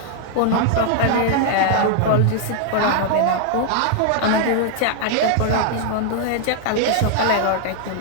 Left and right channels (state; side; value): different; both; correlation 0.00